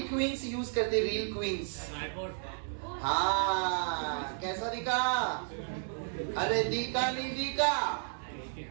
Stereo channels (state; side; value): silent; left; digital silence